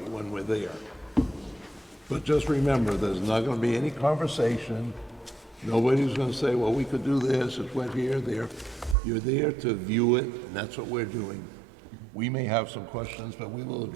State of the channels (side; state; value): left; drops out; at 9.0 s